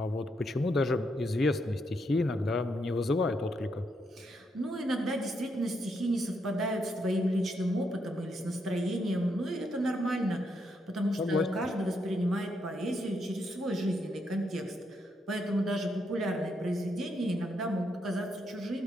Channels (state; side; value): normal; both; correlation 0.78